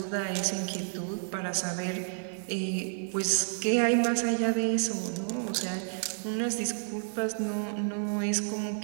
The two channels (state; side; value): silent; left; 58 dB below the other